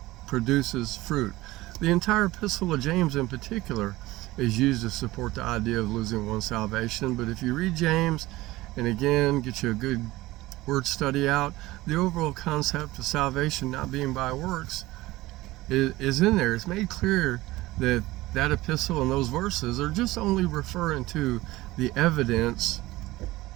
produces fruit. The entire Epistle of James in particular is used to support the idea of losing one's salvation. But if you read James, and again, get you a good word study out, the overall concept of salvation not being by works is in there. It's made clear that that epistle and those verses are just only referring to the evidence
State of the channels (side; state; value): left; quieter; 18.5 dB